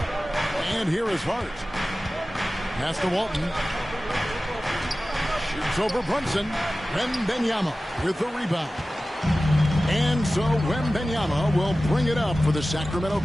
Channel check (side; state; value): both; normal; correlation 0.96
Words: And here is Hart. Pass to Walton. Shoots over Brunson. Wembanyama with the rebound. And so Wembanyama will bring it up for the Sacramento